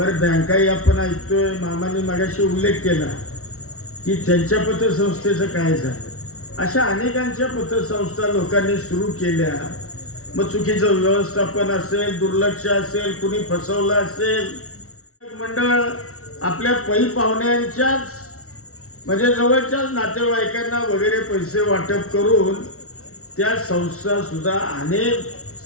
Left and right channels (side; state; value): right; late; 0.63 ms